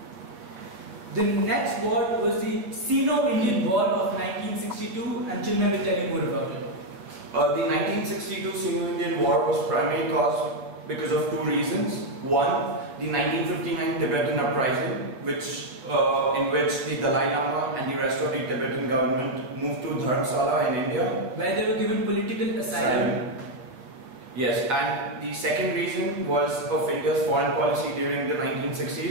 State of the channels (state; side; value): late; left; 8.1 ms